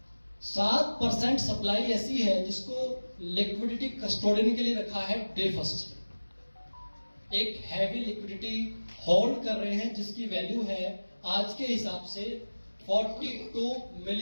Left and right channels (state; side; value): inverted; both; correlation -1.00